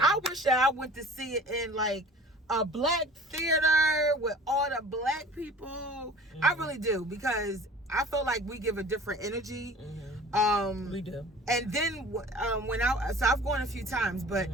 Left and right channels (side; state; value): both; normal; correlation 0.45